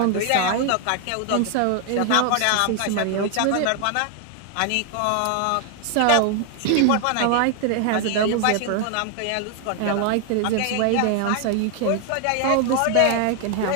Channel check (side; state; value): both; different; correlation 0.00